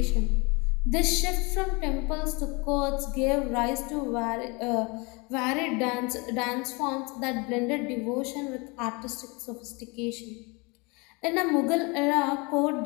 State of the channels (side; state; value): right; quieter; 28.3 dB